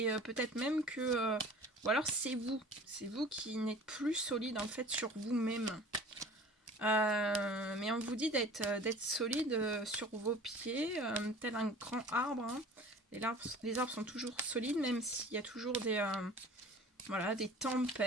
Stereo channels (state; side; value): normal; both; correlation 0.44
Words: peut-être même que... ou alors c'est vous qui n'êtes plus solide en fait sur vous-même. Mais on vous dit d'être solide sur vos pieds, tel un grand arbre. Hein. Les arbres sont toujours solides, même s'il y a toujours voilà, des